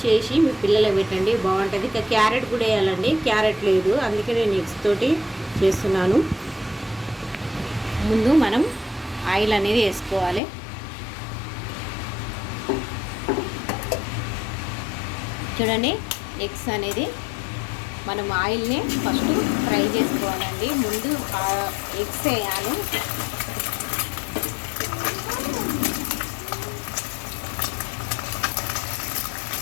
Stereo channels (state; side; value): drops out; right; at 10.4 s